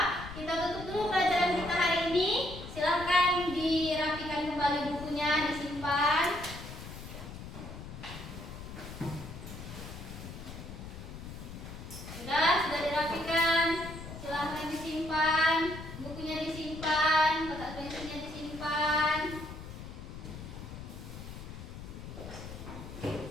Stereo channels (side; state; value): left; noise; rumble, 11 dB below the sound